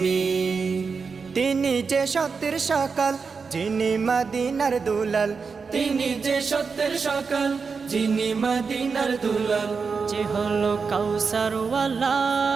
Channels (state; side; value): quieter; left; 5.2 dB